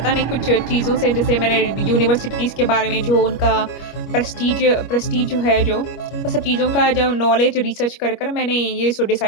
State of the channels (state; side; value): late; right; 25 ms